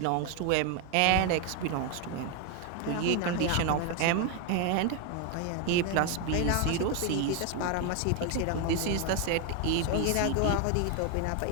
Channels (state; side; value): different; both; correlation 0.01